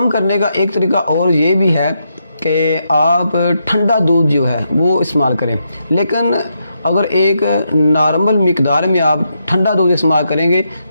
کرنے کا ایک طریقہ اور یہ بھی ہے کہ آپ ٹھنڈا دودھ جو ہے وہ استعمال کریں، لیکن اگر ایک نارمل مقدار میں آپ ٹھنڈا دودھ استعمال کریں گے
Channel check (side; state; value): both; inverted; correlation -0.82